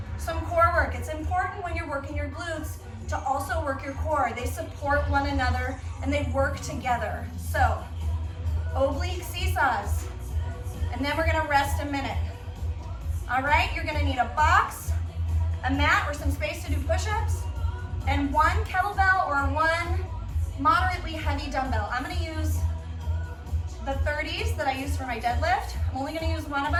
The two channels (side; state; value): both; identical; correlation 1.00